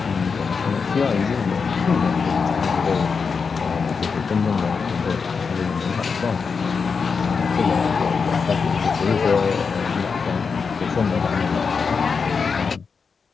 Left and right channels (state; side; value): quieter; right; 5.4 dB